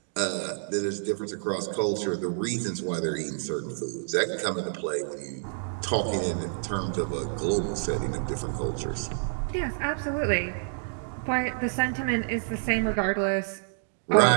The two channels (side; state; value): left; silent; digital silence